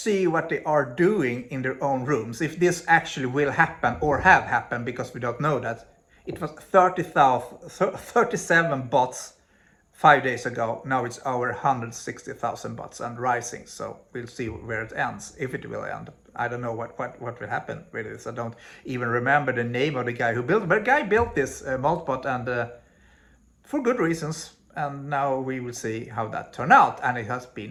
what they are doing in their own rooms, if this actually will happen or have happened, because we don't know that, it was 37 bots 5 days ago. Now it's over 160,000 bots and rising. So we'll see where it ends, if it will end. I don't know what will happen with this. I don't even remember the name of the guy who built it. But the guy built this Moltbot, and for good reasons. And now we will see how that turned out. And it has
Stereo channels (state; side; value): identical; both; correlation 1.00